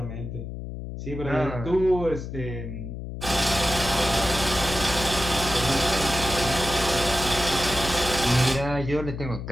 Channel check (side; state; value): left; noise; hum, 8 dB below the sound